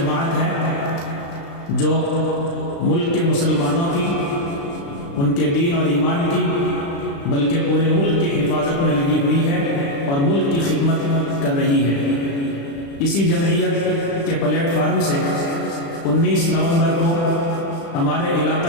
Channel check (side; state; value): right; late; 36 ms